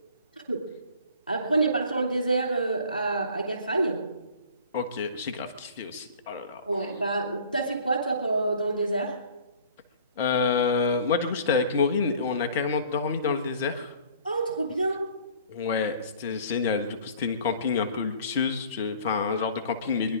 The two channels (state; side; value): inverted; both; correlation -0.49